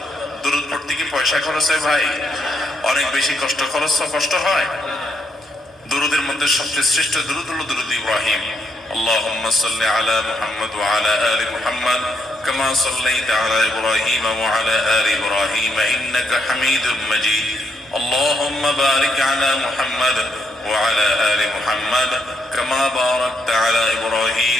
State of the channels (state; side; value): normal; both; correlation 0.76